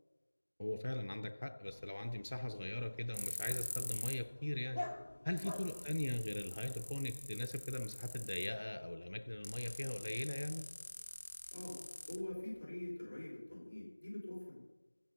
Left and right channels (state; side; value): inverted; both; correlation -1.00